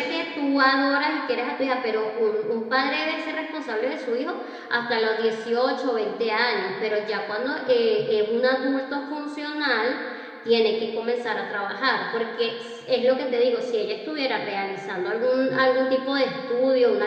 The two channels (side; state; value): both; identical; correlation 1.00